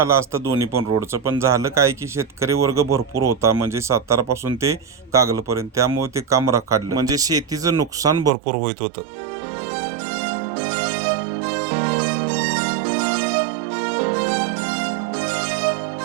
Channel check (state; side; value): drops out; left; at 8.3 s